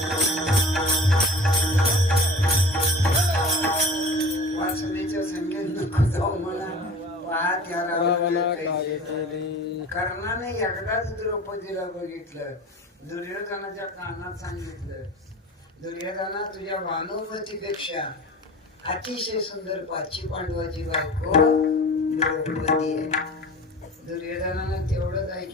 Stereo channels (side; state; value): both; normal; correlation 0.39